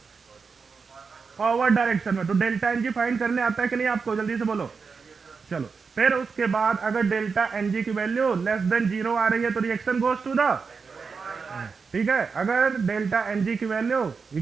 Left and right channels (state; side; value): quieter; left; 5.2 dB